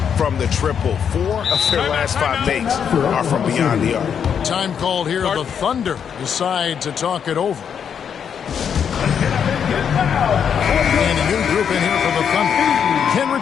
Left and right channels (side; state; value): right; quieter; 7.7 dB